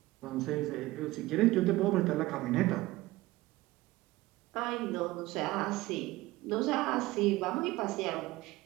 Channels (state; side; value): quieter; left; 18.9 dB